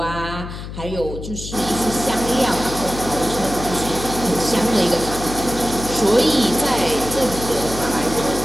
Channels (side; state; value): left; noise; hum, 9 dB below the sound